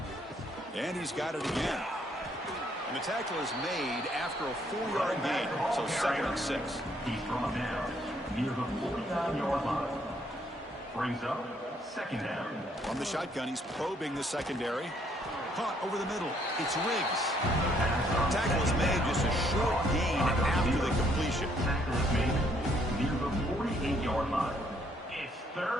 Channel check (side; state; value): both; normal; correlation 0.68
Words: And he's got it again. And the tackle is made after a 4-yard gain. So 2nd and 6. He's brought down near the 49-yard line. Brings up 2nd down. From the shotgun, he's probing the secondary. Caught over the middle. It's Riggs. Tackle is made, just a short gain after the completion. Tackle is made near the 48-yard line. It's